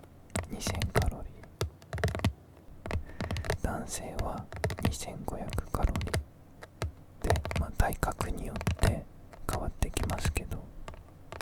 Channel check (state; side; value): identical; both; correlation 1.00